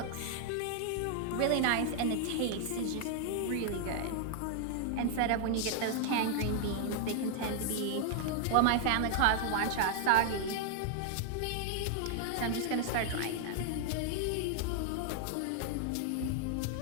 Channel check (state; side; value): different; both; correlation 0.00